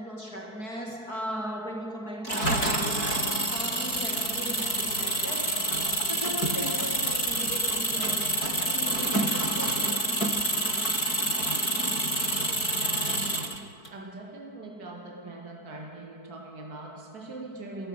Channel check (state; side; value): late; right; 4.6 ms